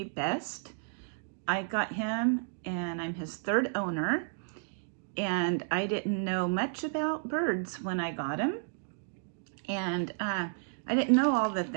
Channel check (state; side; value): silent; left; digital silence